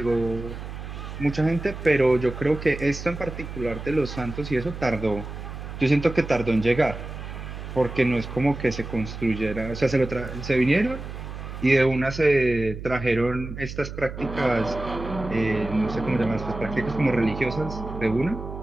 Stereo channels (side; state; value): right; noise; hum, 9 dB below the sound